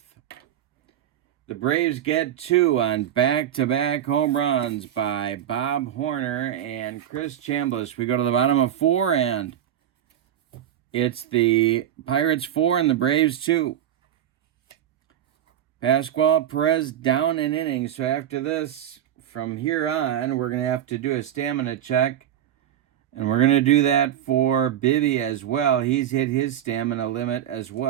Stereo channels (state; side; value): quieter; left; 10.7 dB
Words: the Braves get 2 on back-to-back home runs by Bob Horner and Chris Chambliss. We go to the bottom of 4, and it's the Pirates 4 and the Braves 2. Pascual, Perez down an inning. So after this, from here on, we're going to have to do a stamina check. And we're going to do that for Bibby as well. He's hit his stamina limit as